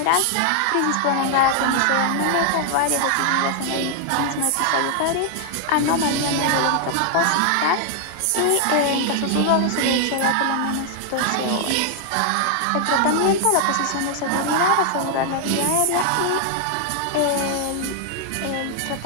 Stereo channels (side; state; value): both; different; correlation 0.00